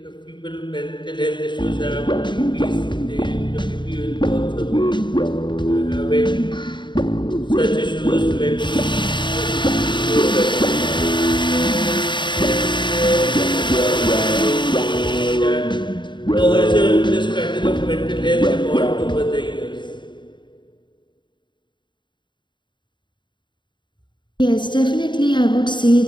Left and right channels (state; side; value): late; right; 0.23 ms